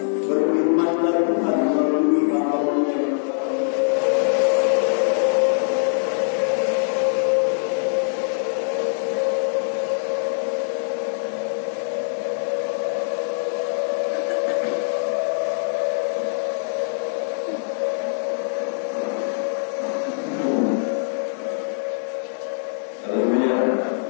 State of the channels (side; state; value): right; silent; digital silence